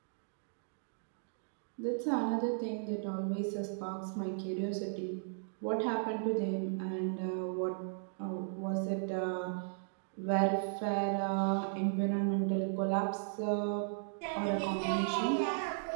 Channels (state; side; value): silent; left; digital silence